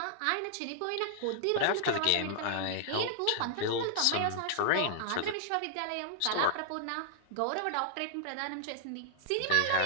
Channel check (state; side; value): different; both; correlation -0.01